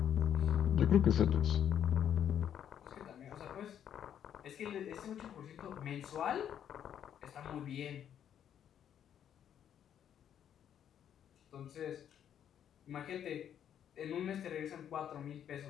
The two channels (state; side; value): quieter; right; 9.5 dB